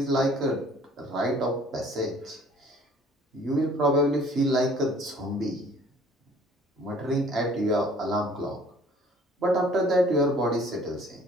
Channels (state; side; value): normal; both; correlation 0.54